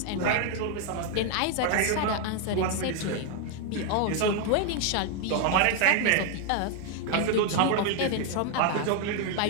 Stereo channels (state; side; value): different; both; correlation 0.01